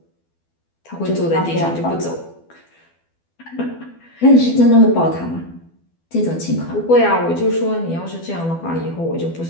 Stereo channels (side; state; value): right; late; 12 ms